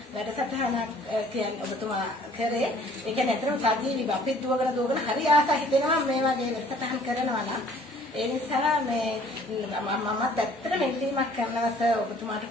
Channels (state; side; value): normal; both; correlation 0.55